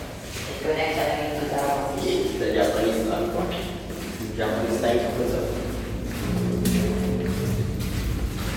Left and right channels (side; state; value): both; identical; correlation 1.00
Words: Ito na yung sa namin 2000. The Japanese lang po. Japanese time po sa...